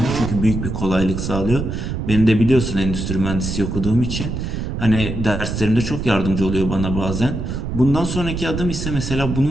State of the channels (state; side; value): noise; right; rumble, 4 dB below the sound